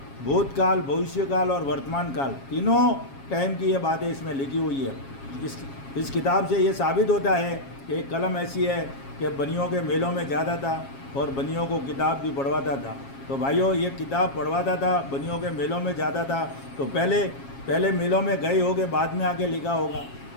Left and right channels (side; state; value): right; late; 7.3 ms